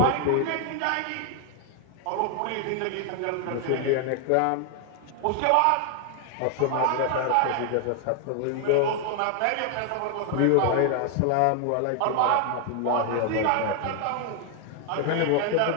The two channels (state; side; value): different; both; correlation 0.00